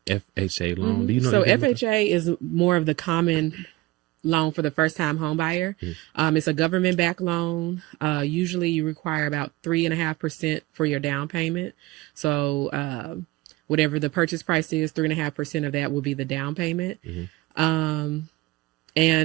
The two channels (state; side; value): quieter; left; 20.1 dB